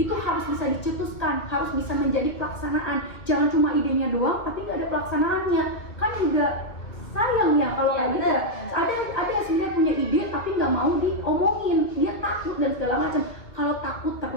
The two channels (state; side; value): late; right; 1.5 ms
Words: harus bisa dicetuskan, harus bisa menjadi pelaksanaan. Jangan cuma idenya doang, tapi nggak ada pelaksanaannya. Kan juga sayang ya kalau kayak gitu. Ada yang sebenarnya punya ide tapi nggak mau diomongin, dia takut dan segala macam. Kalau takut